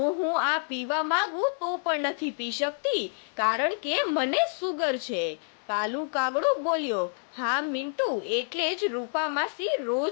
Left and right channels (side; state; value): right; silent; digital silence